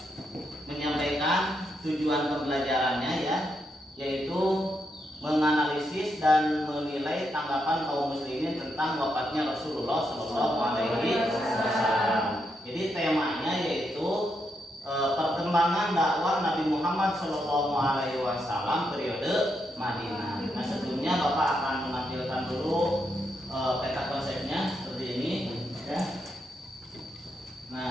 menyampaikan tujuan pembelajarannya ya, yaitu menganalisis dan menilai tanggapan kaum muslimin tentang wafatnya Rasulullah Shallallahu Alaihi Wasallam. Jadi temanya yaitu perkembangan dakwah Nabi Muhammad Shallallahu Alaihi Wasallam periode Madinah. Nah, sebelumnya Bapak akan menampilkan dulu peta konsepnya seperti ini ya.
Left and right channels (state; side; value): normal; both; correlation 0.81